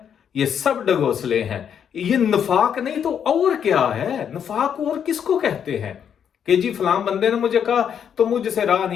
یہ سب ڈنگوسلے ہیں۔ یہ نفاق نہیں تو اور کیا ہے؟ نفاق اور کس کو کہتے ہیں؟ کہ جی فلاں بندے نے مجھے کہا تو مجھ سے رہا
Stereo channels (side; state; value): right; quieter; 8.2 dB